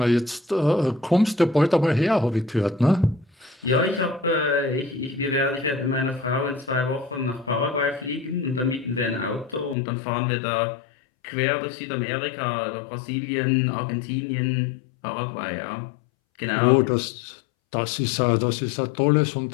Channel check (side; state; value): right; drops out; at 9.8 s